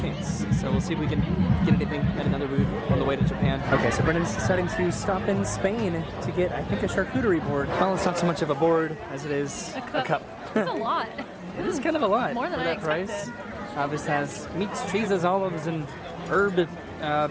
So we'll see if we can get anything at another booth on the way to Japan. Okay, so Brennan's deciding to stop in Spain to get, I think, a charcuterie board. Well, it's not so much of a board as it is a cup. It's a lot. It is kind of a lot. More than for I that price. expected. This has meats, cheeses, olives, and herb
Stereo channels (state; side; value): identical; both; correlation 1.00